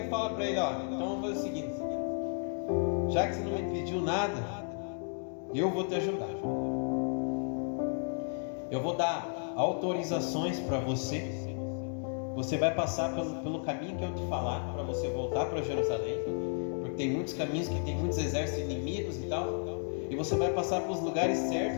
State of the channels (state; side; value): silent; right; 56 dB below the other